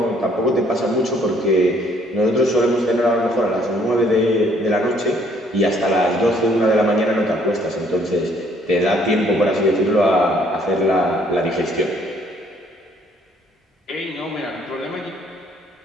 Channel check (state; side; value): normal; both; correlation 0.64